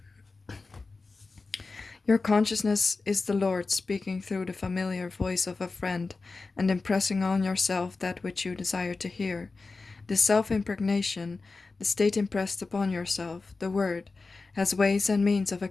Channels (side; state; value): right; quieter; 3.9 dB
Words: Your consciousness is the Lord speaking through the familiar voice of a friend and impressing on yourself that which you desire to hear. This self-impregnation, the state impressed upon yourself, the word, has ways and means of